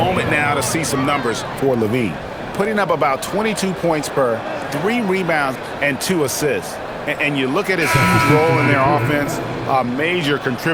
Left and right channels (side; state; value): both; identical; correlation 1.00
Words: now to see some numbers for Levine. Putting up about 22 points per, 3 rebounds, and 2 assists. And you look at his role in their offense, a major